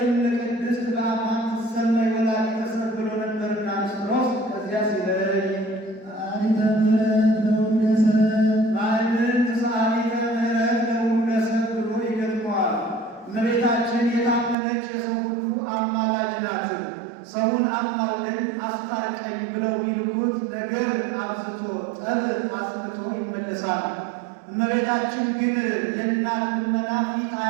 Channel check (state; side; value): drops out; left; at 14.6 s